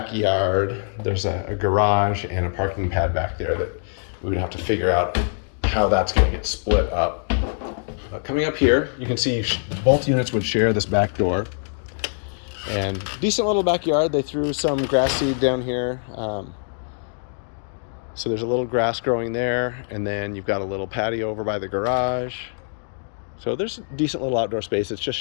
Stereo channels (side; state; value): right; silent; digital silence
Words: There's a garage and a parking pad back there that we would have to figure out how that's going to get split up. Coming up here, you can see both units would share this back door. And decent little backyard. They threw some grass seed down here. So there's a little grass growing there. And then you've got a little patio over by the garage. So there's a decent little outdoor space. It's just